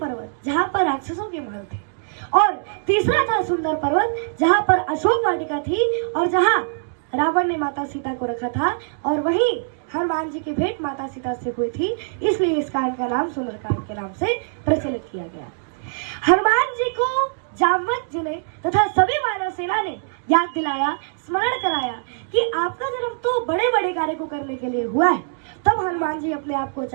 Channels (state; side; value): silent; left; digital silence